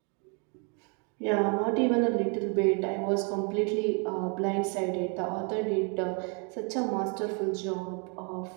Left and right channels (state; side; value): quieter; left; 36.0 dB